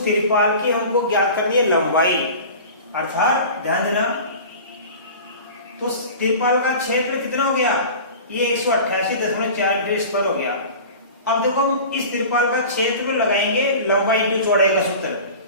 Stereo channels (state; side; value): inverted; both; correlation -0.37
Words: तिरपाल की हमको ज्ञात करनी है लंबाई, अर्थात ध्यान देना, तो तिरपाल का क्षेत्र कितना हो गया, ये 188.4 मीटर स्क्वायर हो गया। अब देखो हम इस तिरपाल का क्षेत्र लगाएंगे लंबाई इंटू चौड़ाई का सूत्र,